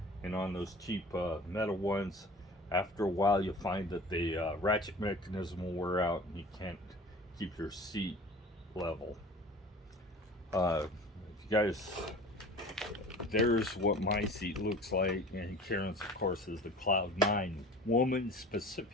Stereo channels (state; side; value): normal; both; correlation 0.41